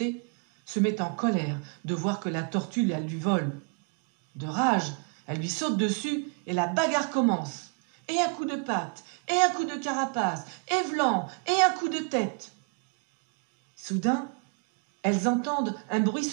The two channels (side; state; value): left; quieter; 35.6 dB